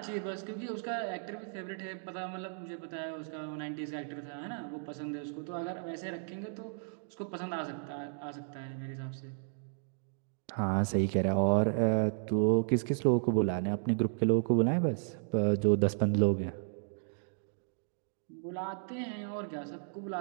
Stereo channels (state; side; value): silent; left; digital silence